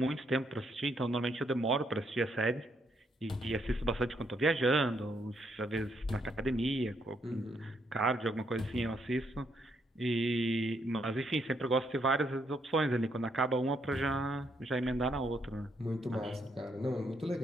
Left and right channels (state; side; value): normal; both; correlation 0.75